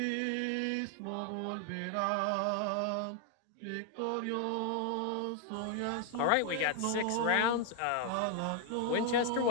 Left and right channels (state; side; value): different; both; correlation 0.00